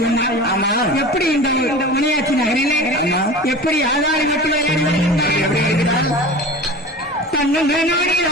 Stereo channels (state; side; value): normal; both; correlation 0.35